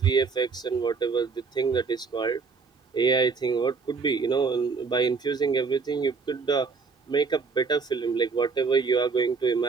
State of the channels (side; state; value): left; quieter; 4.9 dB